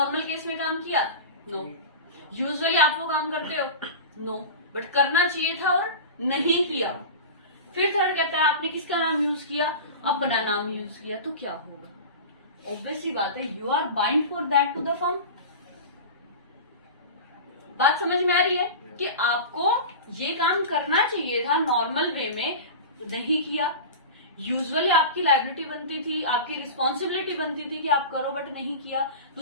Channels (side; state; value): both; inverted; correlation -0.31